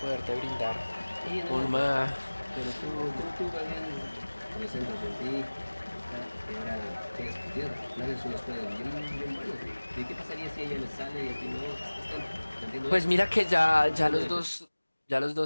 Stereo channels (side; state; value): both; inverted; correlation -1.00